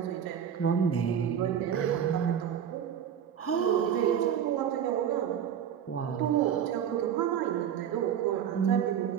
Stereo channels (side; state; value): left; quieter; 9.0 dB